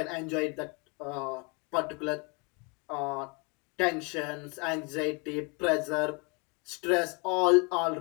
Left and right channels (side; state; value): right; quieter; 31.4 dB